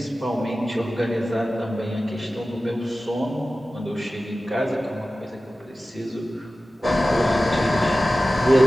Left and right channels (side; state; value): both; normal; correlation 0.95